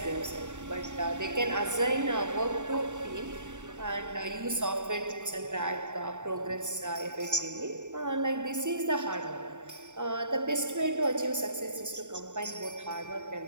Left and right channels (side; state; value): left; late; 0.85 ms